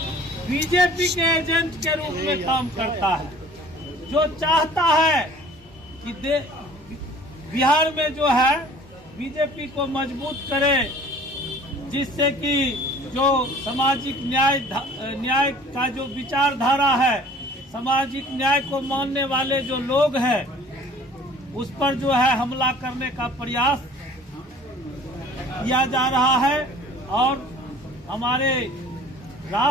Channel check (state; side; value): normal; both; correlation 0.49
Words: बीजेपी के एजेंट के रूप में काम करता है, जो चाहता है कि बिहार में जो है बीजेपी को मजबूत करे, जिससे कि जो सामाजिक न्याय का जो विचारधारा है, सामाजिक न्याय को मानने वाले जो लोग हैं, उस पर जो है हमला करने का प्रयास किया जा रहा है। और हमारे